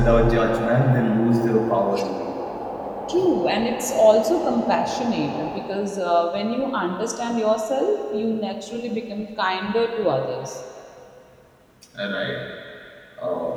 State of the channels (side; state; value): both; identical; correlation 1.00